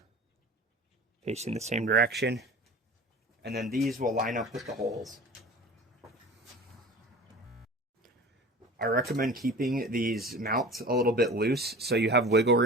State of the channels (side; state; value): both; normal; correlation 0.38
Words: facing the same direction, and then these will line up with the holes. I recommend keeping these mounts a little bit loose so you have wiggle